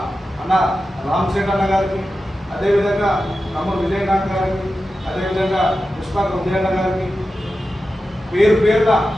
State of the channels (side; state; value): both; normal; correlation 0.92